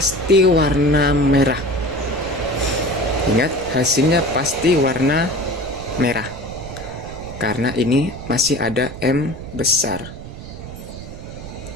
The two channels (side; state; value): right; noise; rumble, 12 dB below the sound